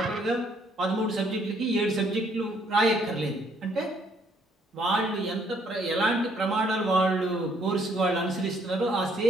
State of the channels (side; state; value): both; normal; correlation 0.67